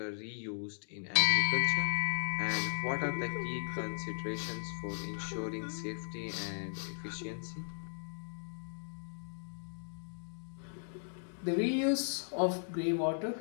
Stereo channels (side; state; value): right; silent; digital silence